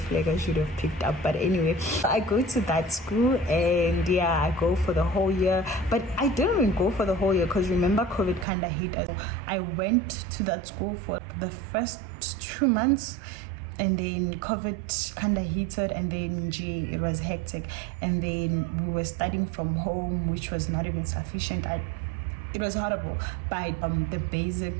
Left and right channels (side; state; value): left; drops out; at 8.5 s